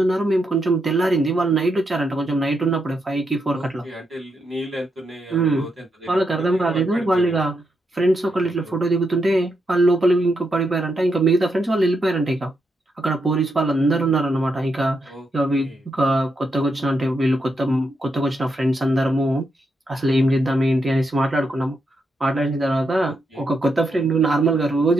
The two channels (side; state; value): both; normal; correlation 0.82